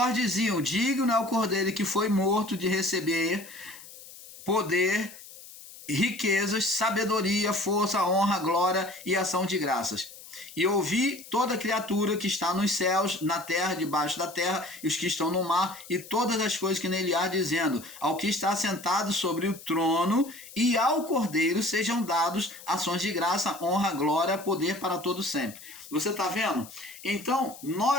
diziam: digno é o cordeiro que foi morto de receber poder, riquezas, sabedoria, força, honra, glória e ação de graças. E ouvi toda criatura que está nos céus, na terra, debaixo da terra, e os que estão no mar, e todas as coisas que nele há, dizendo: ao que está sentado sobre o trono e ao cordeiro sejam dados ações de graça, honra, glória, poder para todo sempre. Você está vendo? Então,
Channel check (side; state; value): left; noise; hiss, 17 dB below the sound